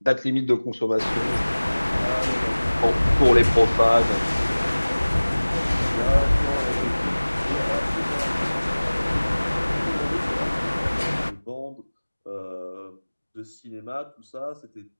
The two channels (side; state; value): both; inverted; correlation -1.00